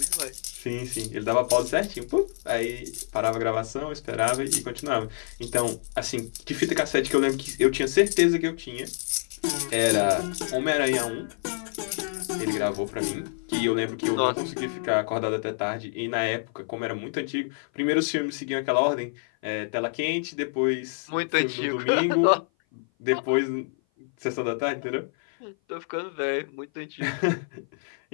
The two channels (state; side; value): silent; right; 56 dB below the other